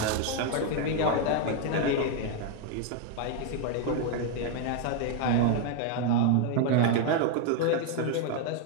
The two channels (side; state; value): both; different; correlation 0.01